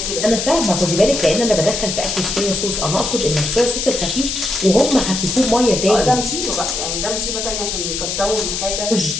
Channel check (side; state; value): left; noise; hiss, 3 dB below the sound